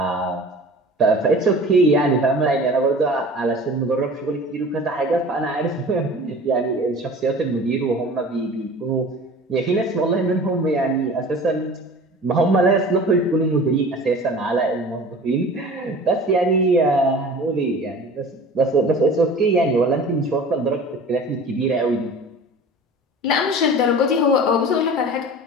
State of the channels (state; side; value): normal; both; correlation 0.40